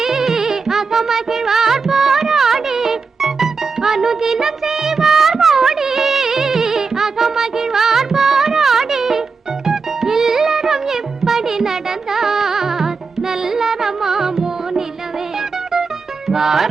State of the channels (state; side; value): quieter; left; 4.8 dB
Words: அகமகிழ்வார் போராடி. அனுதினம் செய்வார் மோடி, அகமகிழ்வார் போராடி. இல்லறம் எப்படி நடந்தார் நல்லறமாமோ நிலவே.